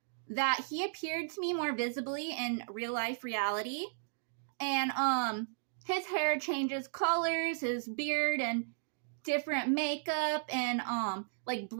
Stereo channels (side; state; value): left; silent; digital silence